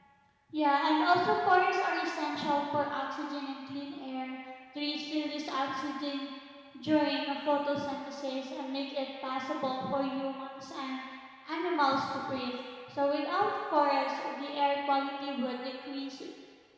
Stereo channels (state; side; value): identical; both; correlation 1.00